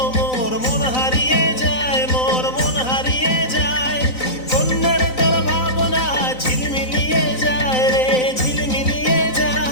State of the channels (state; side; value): late; right; 3.9 ms